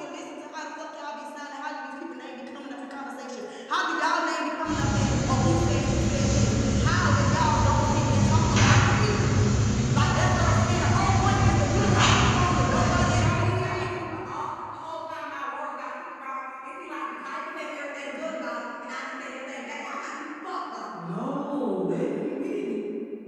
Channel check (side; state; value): both; identical; correlation 1.00